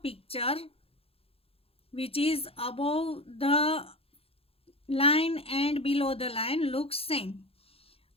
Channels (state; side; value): late; right; 0.28 ms